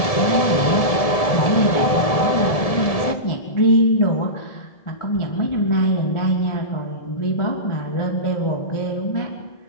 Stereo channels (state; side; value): late; right; 1.7 ms